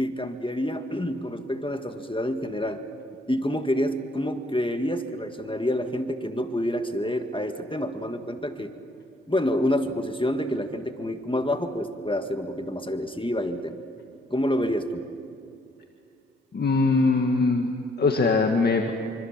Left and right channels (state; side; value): normal; both; correlation 0.67